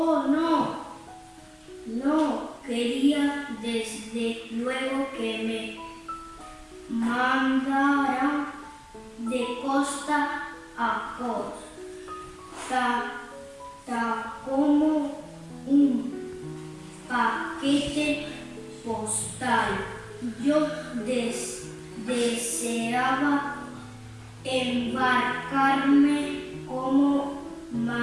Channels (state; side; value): identical; both; correlation 1.00